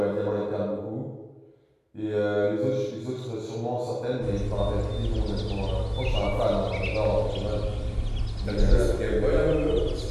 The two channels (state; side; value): identical; both; correlation 1.00